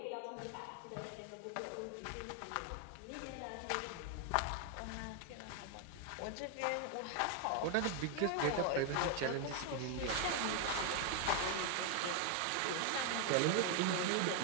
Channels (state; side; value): different; both; correlation 0.00